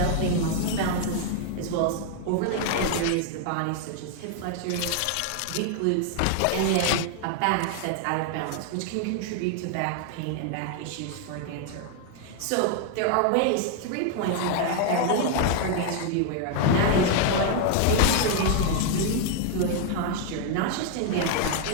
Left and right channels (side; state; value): both; different; correlation 0.00